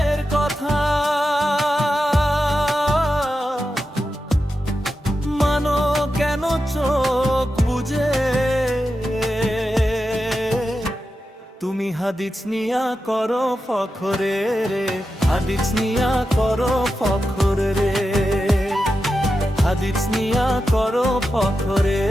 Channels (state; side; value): normal; both; correlation 0.90